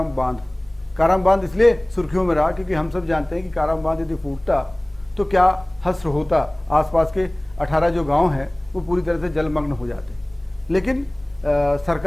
बांध। काराम बांध इसलिए सुर्खियों में रहा क्योंकि हम सब जानते हैं कि काराम बांध यदि फूटता तो क्या हश्र होता, आसपास के 18 जो गाँव हैं वो पूरी तरह से जलमग्न हो जाते। लेकिन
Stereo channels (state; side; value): noise; left; hum, 25 dB below the sound